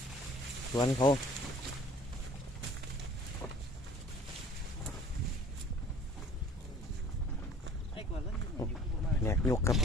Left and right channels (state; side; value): normal; both; correlation 0.50